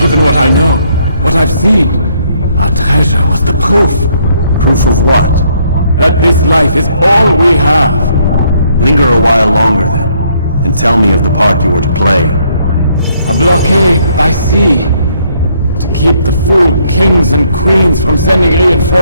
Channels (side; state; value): both; inverted; correlation -0.69